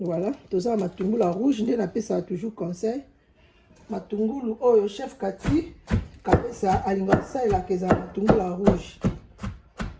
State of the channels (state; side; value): identical; both; correlation 1.00